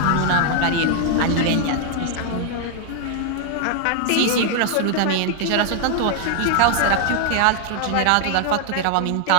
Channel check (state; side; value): different; both; correlation 0.00